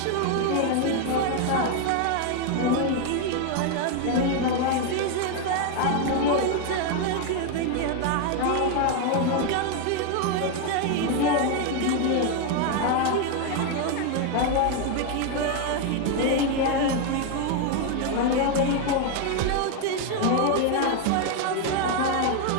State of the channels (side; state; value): both; different; correlation 0.01